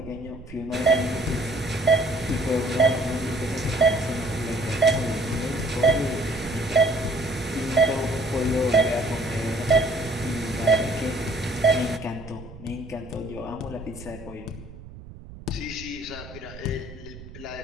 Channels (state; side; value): noise; right; rumble, 16 dB below the sound